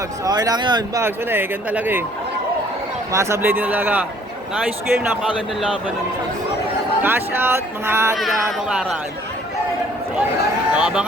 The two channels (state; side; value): normal; both; correlation 0.59